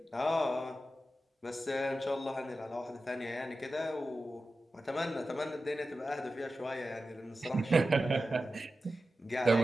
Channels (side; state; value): both; normal; correlation 0.93